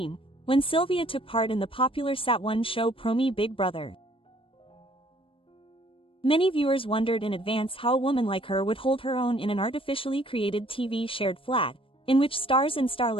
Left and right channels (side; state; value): right; late; 0.26 ms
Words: when Sylvia took part in the popular Sat1 show Promi Big Brother. Many viewers wondered in advance how a woman like her would hold her own in an artificially created TV shared flat, in which stars and